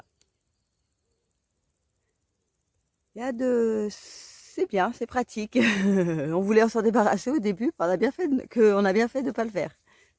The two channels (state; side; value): identical; both; correlation 1.00